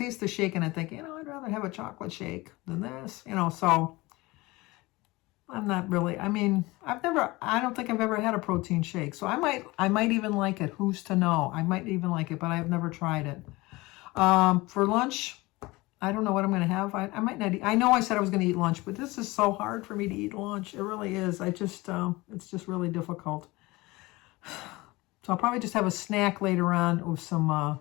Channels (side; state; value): right; quieter; 21.7 dB